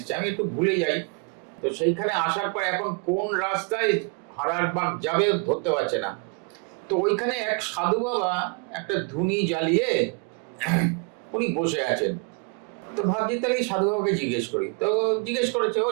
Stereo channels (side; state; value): left; quieter; 35.1 dB